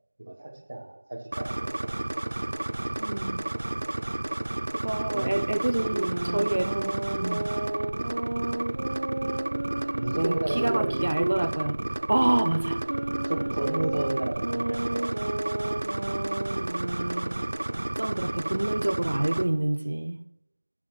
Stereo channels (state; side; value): inverted; both; correlation -1.00